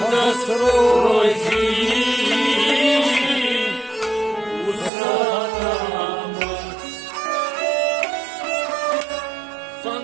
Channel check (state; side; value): drops out; left; at 4.9 s